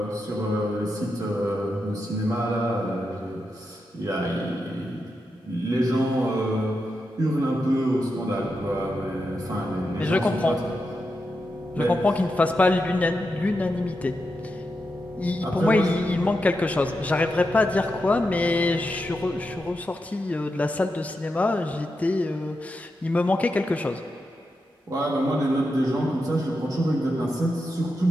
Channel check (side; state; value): both; normal; correlation 0.87